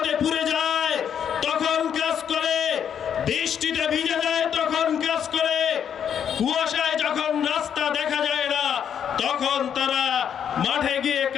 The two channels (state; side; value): quieter; right; 8.5 dB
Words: পুড়ে যায় তখন কাজ করে, বৃষ্টিতে ভিজে যায় তখন কাজ করে, কুয়াশায় যখন রাস্তা দেখা যায় না তখন তারা মাঠে গিয়ে